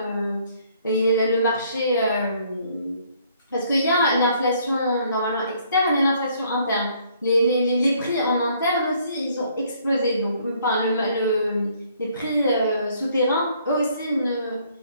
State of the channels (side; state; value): both; inverted; correlation -0.64